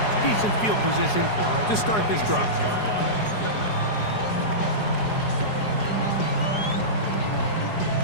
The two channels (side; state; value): right; late; 4.8 ms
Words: Decent field position to start this drive.